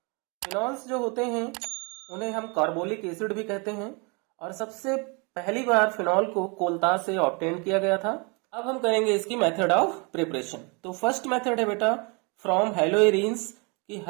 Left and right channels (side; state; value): left; quieter; 31.2 dB